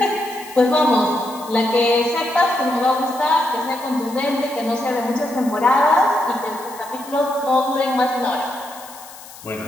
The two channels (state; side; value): noise; left; hiss, 18 dB below the sound